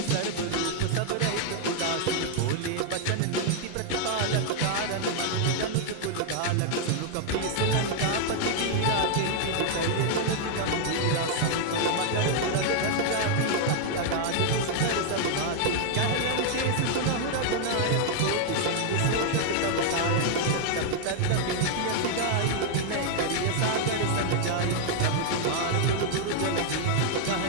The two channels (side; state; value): both; different; correlation 0.00